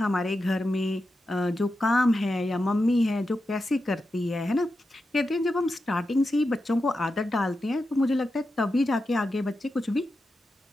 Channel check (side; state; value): both; normal; correlation 0.89